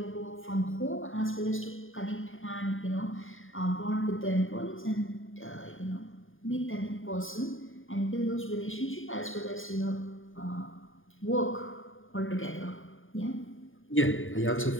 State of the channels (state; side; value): late; right; 0.59 ms